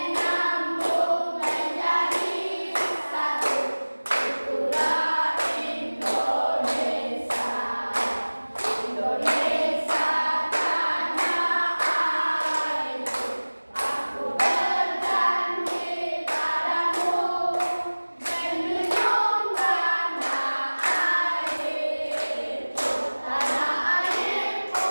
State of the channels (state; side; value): inverted; both; correlation -1.00